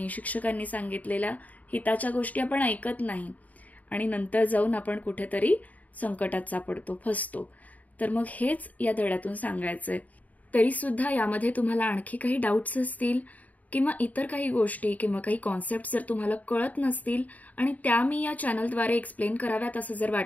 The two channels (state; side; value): late; right; 0.074 ms